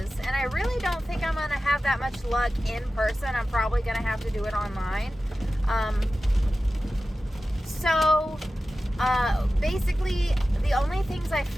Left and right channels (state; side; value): normal; both; correlation 0.95